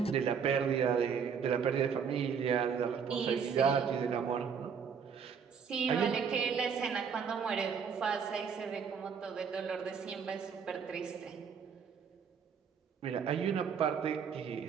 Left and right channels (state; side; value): quieter; left; 6.7 dB